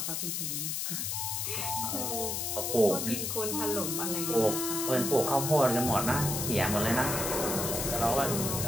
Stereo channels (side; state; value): left; noise; hiss, 1 dB below the sound